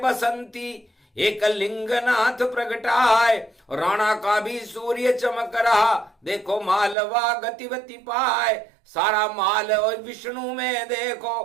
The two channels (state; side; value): drops out; left; at 7.0 s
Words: एक लिंगनाथ प्रगटाए। राणा का भी सूर्य चमक रहा, देखो मालवा गतिवती पाए। सारा माल और विष्णु में